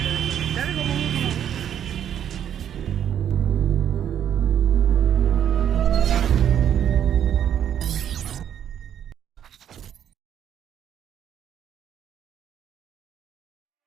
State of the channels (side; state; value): left; quieter; 9.6 dB